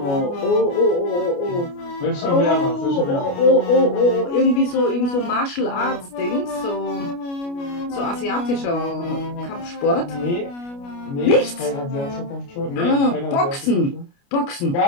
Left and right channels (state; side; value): late; right; 29 ms